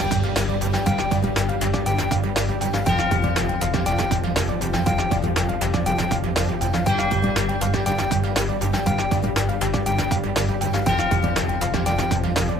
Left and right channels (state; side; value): noise; left; hum, 4 dB below the sound